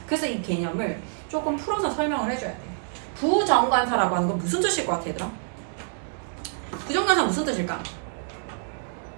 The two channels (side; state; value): left; silent; 60 dB below the other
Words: 그래서 이 개념을 조금 풀어서 설명을 해줘야 돼. 부정관사라고 하는 건 무슨 뜻일 것 같아, 얘들아? 부정관사 무슨 뜻일까?